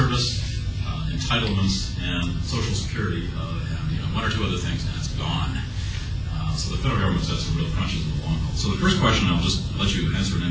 entitlements, and Social Security, and 1 or 2 other things, and it's gone. So the federal government's got some real crunches in the long haul. So the first question, I'll just let you answer in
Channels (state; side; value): identical; both; correlation 1.00